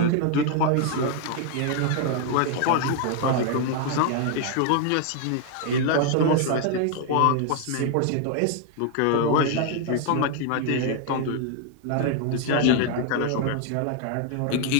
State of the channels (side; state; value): both; different; correlation 0.00